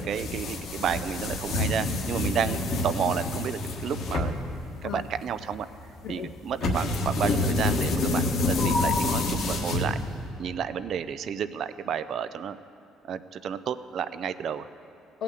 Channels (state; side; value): normal; both; correlation 0.57